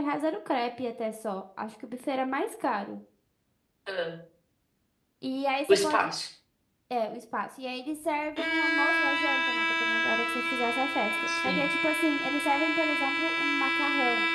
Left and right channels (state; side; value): identical; both; correlation 1.00